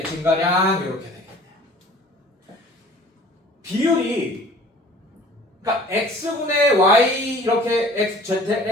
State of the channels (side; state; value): both; normal; correlation 0.49